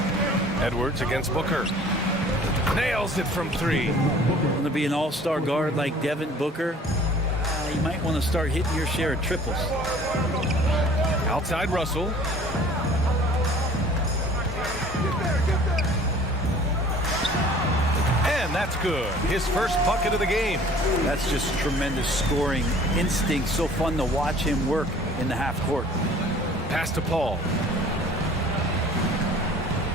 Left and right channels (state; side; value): normal; both; correlation 0.50